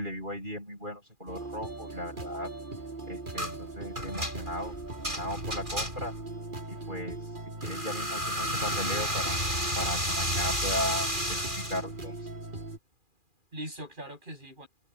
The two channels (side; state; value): left; late; 2.4 ms